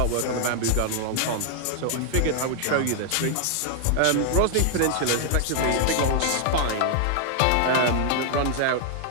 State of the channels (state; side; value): different; both; correlation 0.00